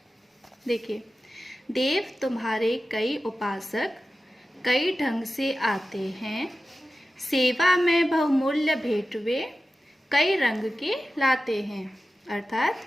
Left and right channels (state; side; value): normal; both; correlation 0.93